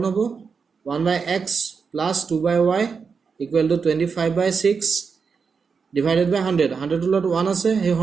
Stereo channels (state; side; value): quieter; left; 5.5 dB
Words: হ'ব 1/x plus 2/y equal to 25/6 divided by 100 100 to lot 1 আছে এই